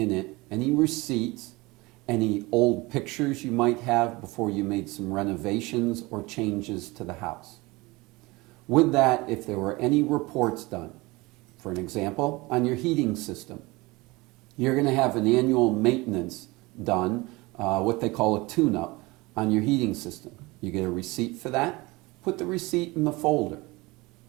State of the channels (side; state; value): left; quieter; 22.9 dB